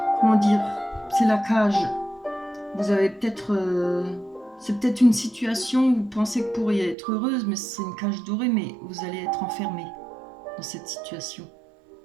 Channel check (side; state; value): left; drops out; at 7.0 s